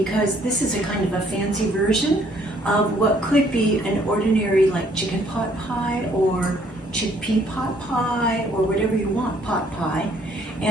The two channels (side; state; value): both; normal; correlation 0.64